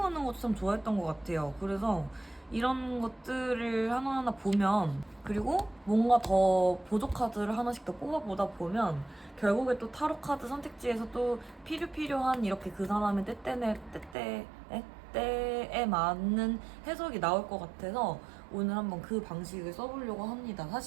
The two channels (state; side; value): drops out; left; at 14.2 s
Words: 것도 참 좋아했던 것 같아요. 그래서 이런 것들을 하나하나 보면 그리고 뭔가 더 보조 카드를 하나씩 더 뽑아보다 보면 결국에 또 타로 카드 선택지에서 또 필요한 이렇게 그 사람의 때에 맞는 해석이 나올 것 같아서 오늘 한번 그 방식을 써보려고 합니다.